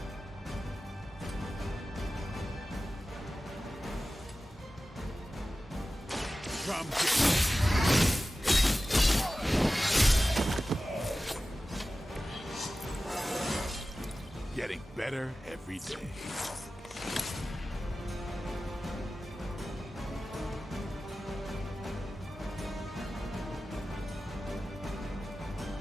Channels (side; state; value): both; normal; correlation 0.95